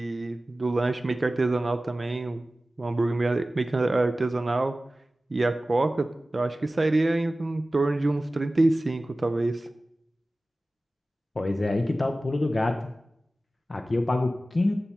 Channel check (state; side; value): normal; both; correlation 0.96